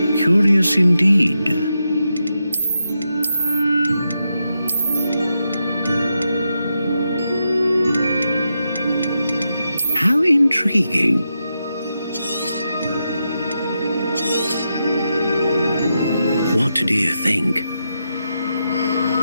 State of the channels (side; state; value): both; inverted; correlation -0.86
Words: Curious indeed. How intriguing. What do you think?